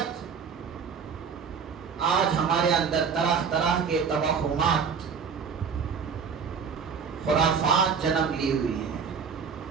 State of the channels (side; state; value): left; quieter; 6.2 dB